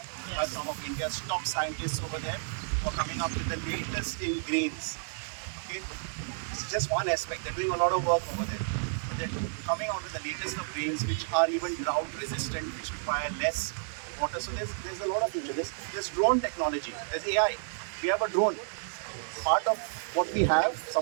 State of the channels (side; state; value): left; silent; digital silence